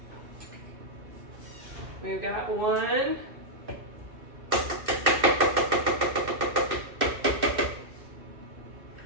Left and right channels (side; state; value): left; late; 2.6 ms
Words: We've got 1.